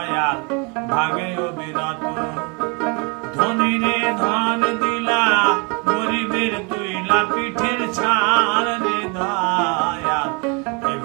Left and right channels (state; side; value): quieter; left; 31.4 dB